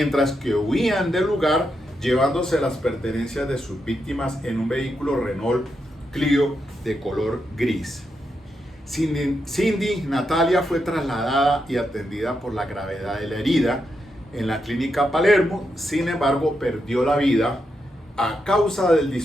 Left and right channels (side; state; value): both; normal; correlation 0.84